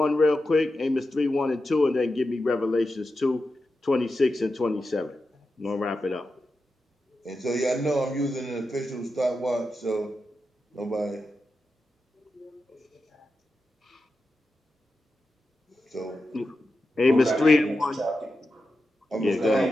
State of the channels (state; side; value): normal; both; correlation 0.90